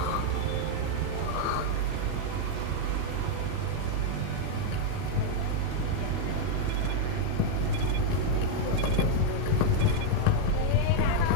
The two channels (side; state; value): both; different; correlation -0.01